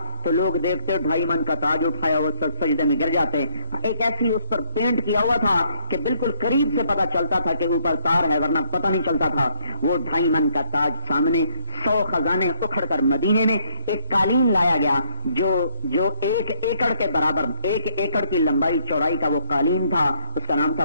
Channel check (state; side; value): inverted; both; correlation -0.69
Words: تو لوگ دیکھتے 2.5 من کا تاج اٹھایا وہ سجدے میں گر جاتے. ایک ایسی اس پر پینٹ کیا ہوا تھا کہ بالکل قریب سے پتا چلتا تھا کہ اوپر تار ہے، ورنہ پتہ نہیں چلتا تھا. وہ 2.5 من کا تاج سامنے، 100 خزانے اکھڑ کر مدینے میں ایک قالین لایا گیا جو 1 ایکڑ کے برابر، 1 ایکڑ کی لمبائی چوڑائی کا وہ قالین تھا. اس کا نام تھا